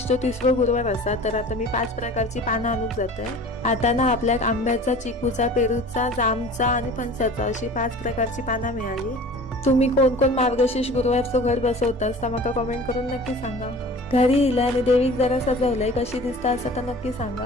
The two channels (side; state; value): both; normal; correlation 0.42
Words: 30वा गुरुवार असा, तर आता मी 5 प्रकारची पानं आणून जातोय। आता ना आपल्या आंब्याचा, चिकूचा, पेरूचा, जामचा आणि फणसाचा अशी 5 प्रकारची पानं मिळाली। तुम्ही कोण कोण मार्गशीर्ष गुरुवारचं घर बसवतास तर मला कमेंट करून नक्की सांगा। घरी इला आणि देवीक जरा सजवलंय, कशी दिसता असं तर नक्की